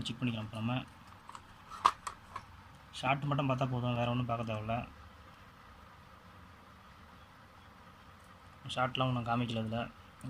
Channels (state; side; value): identical; both; correlation 1.00